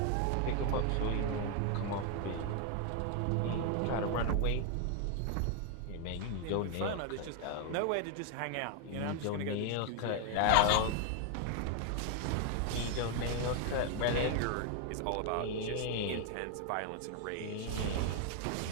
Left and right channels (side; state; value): both; different; correlation 0.00